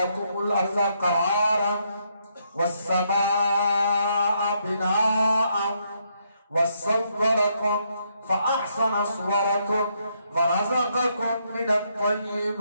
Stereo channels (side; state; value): both; inverted; correlation -0.75